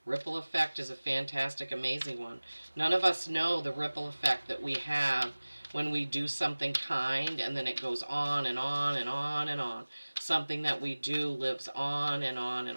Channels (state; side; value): inverted; both; correlation -1.00